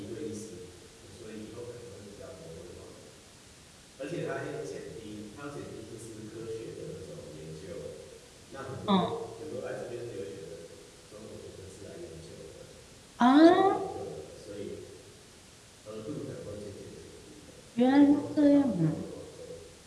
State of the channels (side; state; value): both; identical; correlation 1.00